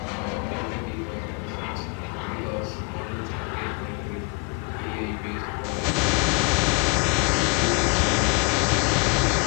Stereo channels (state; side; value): quieter; right; 31.9 dB